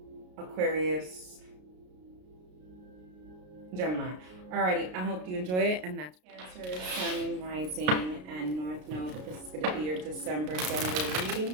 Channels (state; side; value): late; left; 33 ms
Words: Aquarius, Gemini. Alrighty, I hope you enjoyed it. And that's Cancer, Sun, Rising, and North Node. This is going to be your December general